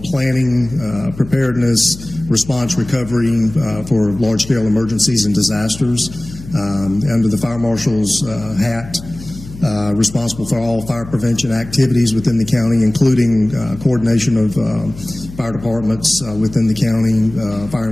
planning, preparedness, response, recovery for large-scale emergencies and disasters. Under the Fire Marshal's hat, responsible for all fire prevention activities within the county, including coordination of fire departments within the county, fire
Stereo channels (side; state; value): left; noise; hum, 15 dB below the sound